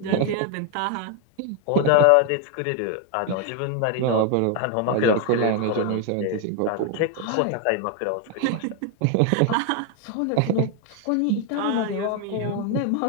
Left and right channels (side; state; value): both; different; correlation 0.01